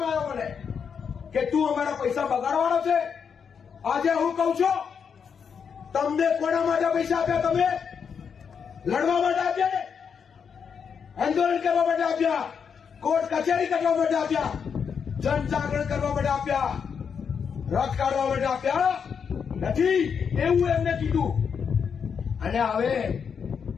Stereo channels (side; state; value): right; quieter; 6.7 dB